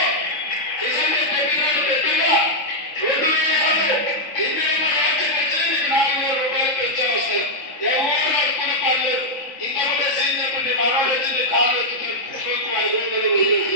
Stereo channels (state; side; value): late; right; 3.5 ms